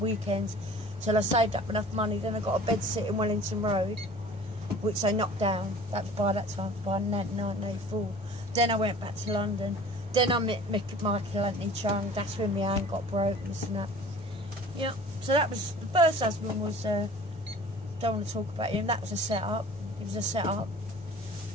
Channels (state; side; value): normal; both; correlation 0.45